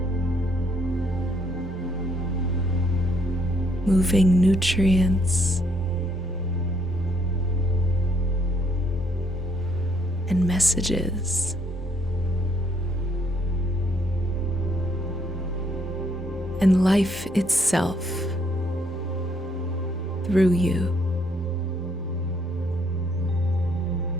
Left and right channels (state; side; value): normal; both; correlation 0.69